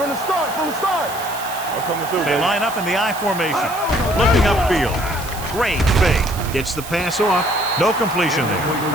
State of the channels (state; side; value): noise; right; hiss, 13 dB below the sound